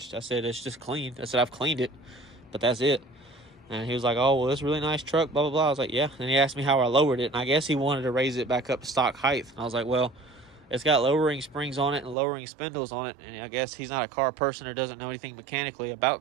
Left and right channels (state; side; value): drops out; left; at 12.2 s